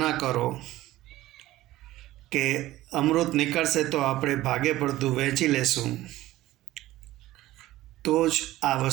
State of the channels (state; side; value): quieter; left; 16.1 dB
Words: કરો કે અમૃત નીકળશે તો આપણે ભાગે પડતું વહેંચી લેશું, તો જ આ